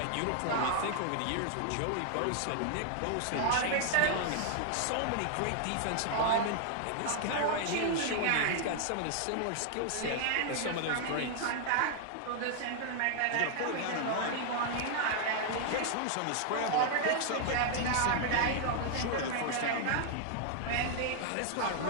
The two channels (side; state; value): both; different; correlation 0.00